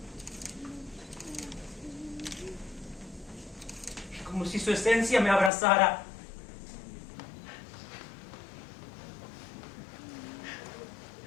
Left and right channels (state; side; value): drops out; right; at 5.5 s